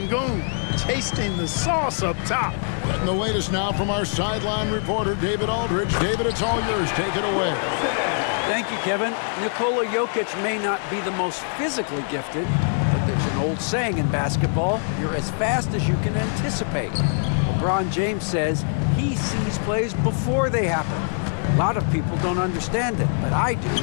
tasting the sauce up top. And the latest now from our sideline reporter, David Aldridge. David, it's all yours. Take it away. Thank you, Kevin. Nikola Jokic may not be the most physically gifted, but there's an old saying in basketball, you're as fast as you can anticipate. LeBron James says he sees plays before they happen. A lot of people don't understand it, but I do.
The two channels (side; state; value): right; silent; 63 dB below the other